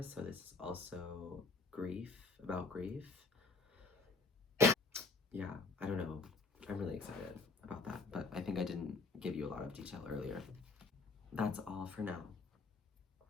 So this is also about grief. Yeah, I don't know. I'm really excited about that, but I think I didn't give you a lot of detail earlier. That's all for now.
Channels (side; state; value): right; quieter; 3.9 dB